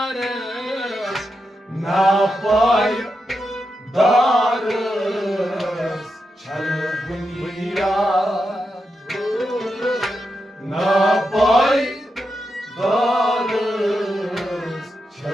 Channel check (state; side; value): normal; both; correlation 0.87